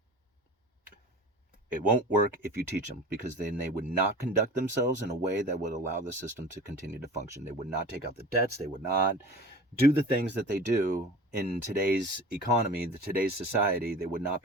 It won't work if you teach them, because then they would not conduct themselves in a way that would allow the system to continue to function. They would not take out the debts. They would not do the things that they do in today's economy, today's society. They would not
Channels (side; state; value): both; normal; correlation 0.38